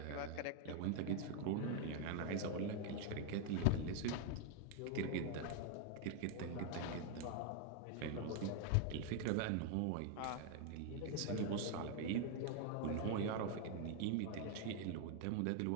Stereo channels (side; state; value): both; different; correlation 0.00